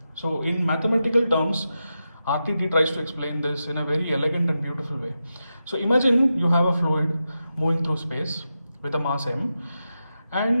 So in mathematical terms, RTT tries to explain this in a very elegant and beautiful way. So imagine you have a fluid moving through space with a mass m,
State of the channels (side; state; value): both; inverted; correlation -0.89